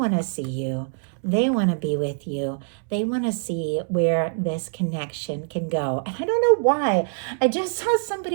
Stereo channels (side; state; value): left; silent; 62 dB below the other